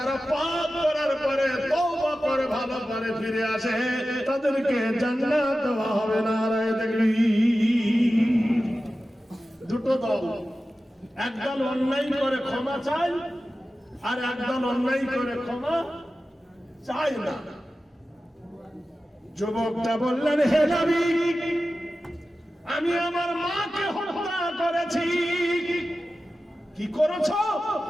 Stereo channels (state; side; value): normal; both; correlation 0.94